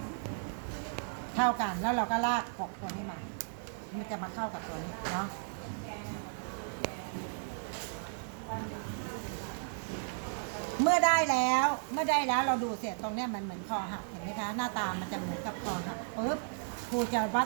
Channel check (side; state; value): left; silent; digital silence